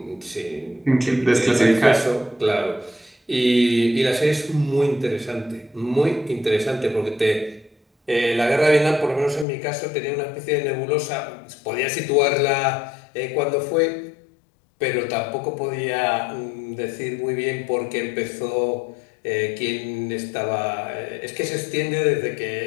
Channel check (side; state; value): right; drops out; at 9.5 s